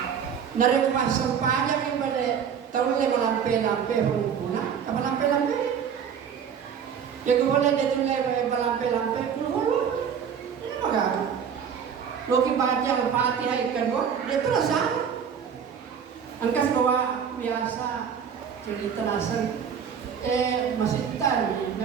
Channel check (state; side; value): quieter; left; 7.5 dB